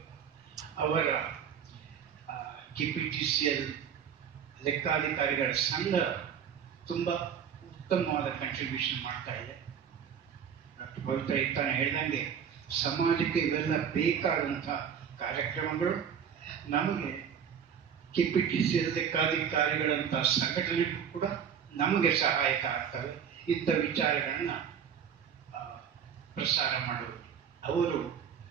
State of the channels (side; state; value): left; quieter; 7.9 dB